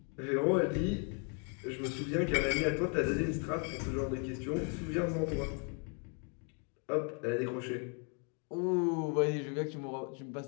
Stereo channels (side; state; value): right; quieter; 39.8 dB